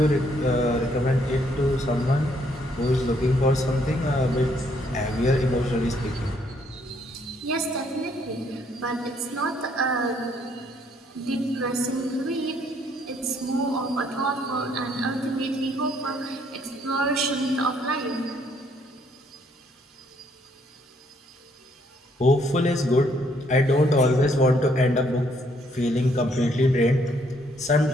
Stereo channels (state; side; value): normal; both; correlation 0.68